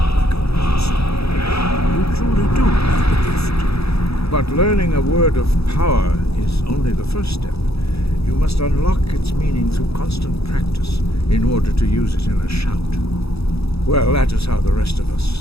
like a monster. You truly do have the gift. But learning a word of power is only the first step. You must unlock its meaning through constant practice in order to use it in a shout. Well, that is how the rest of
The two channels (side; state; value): right; late; 0.78 ms